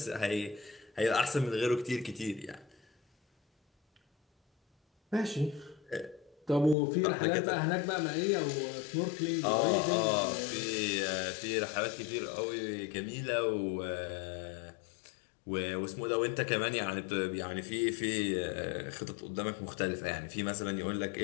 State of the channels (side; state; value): right; drops out; at 6.8 s